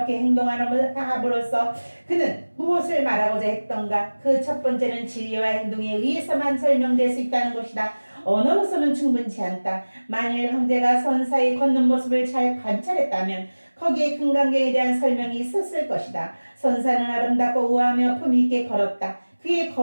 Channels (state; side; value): inverted; both; correlation -1.00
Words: 행동함으로써 그는 무엇을 말하고자 했던가? 그 첫 번째는 진리와 행동에 의해서만 설명될 수 있다는 것이다. 언어로서는 충분치 않다. 만일 황제가 선사의 걷는 모습을 잘 관찰했다면 거기에 금강경에 대한 설명이 있었을 것이다. 선사는 아름답고 우아하며 품위 있게 걸었다. 그의